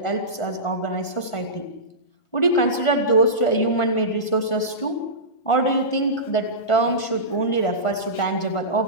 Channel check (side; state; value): right; late; 1.5 ms